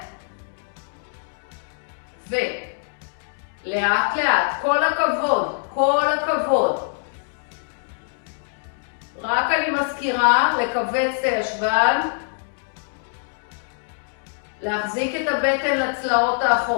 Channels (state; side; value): silent; right; digital silence